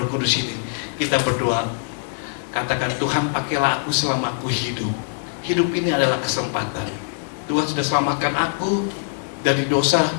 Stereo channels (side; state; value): right; silent; digital silence